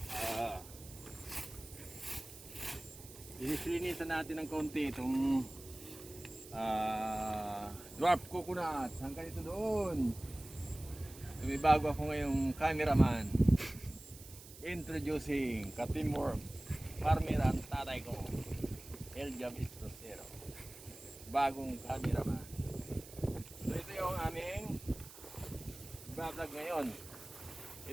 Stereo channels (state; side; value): noise; right; hiss, 17 dB below the sound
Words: Linisan natin ng konti itong dwarf coconut. Hanggang ito doon. May bago ako ngayong cameraman. Introducing ka-teamwork farmer ang tatay ko, Eljam Estrosero. Bagong cameraman. So ito yung aming vlog ngayon.